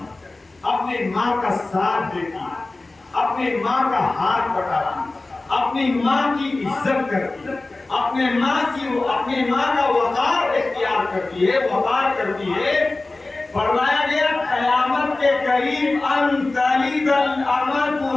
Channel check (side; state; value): right; quieter; 3.2 dB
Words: اپنی ماں کا ساتھ دیتی ہے، اپنی ماں کا ہاتھ بٹاتی ہے، اپنی ماں کی عزت کرتی ہے، اپنے ماں کا وقار اختیار کرتی ہے، وقار کرتی ہے۔ فرمایا گیا قیامت کے قریب ان تلد الامۃ